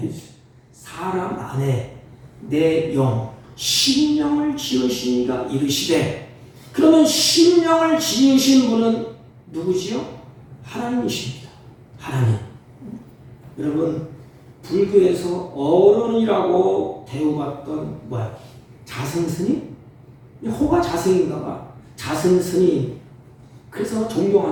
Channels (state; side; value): identical; both; correlation 1.00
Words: 사람 안에 내 영 심령을 지으신 이가 이르시되. 그러면 심령을 지으신 분은 누구지요? 하나님이십니다. 하나님. 여러분, 불교에서 어른이라고 대우받던 자승스님? 호가 자승인가 봐. 자승스님. 그래서